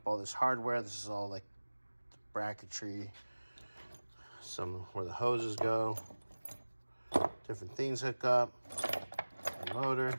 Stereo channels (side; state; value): both; inverted; correlation -1.00